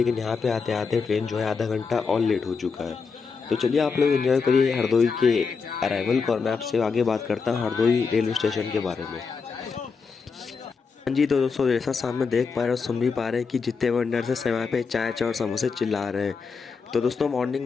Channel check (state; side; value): quieter; right; 5.2 dB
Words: यहाँ पे आते आते ट्रेन जो है आधा घंटा और लेट हो चुका है। तो चलिए आप लोग एंजॉय करिए हरदोई के अराइवल को और मैं आपसे आगे बात करता हूँ हरदोई रेलवे स्टेशन के बारे में। हाँ जी, तो दोस्तों जैसा सामने देख पा रहे हो सुन भी पा रहे हैं कि जितने वेंडर्स हैं समय पे चाय चाय और समोसे चिल्ला रहे हैं। तो दोस्तों मॉर्निंग